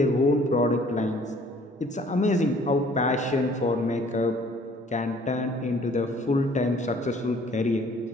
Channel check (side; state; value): both; normal; correlation 0.56